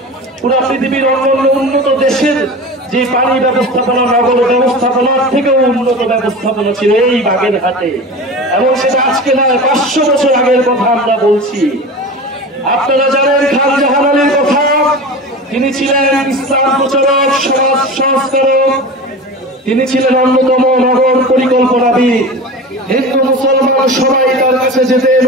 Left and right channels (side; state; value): both; normal; correlation 0.31